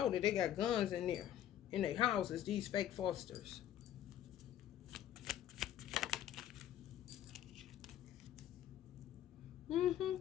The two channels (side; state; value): right; quieter; 11.3 dB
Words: that they got guns in there, in their houses, these fake fosters.